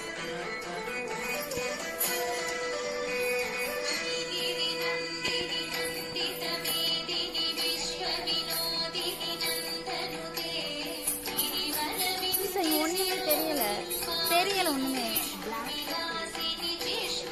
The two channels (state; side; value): identical; both; correlation 1.00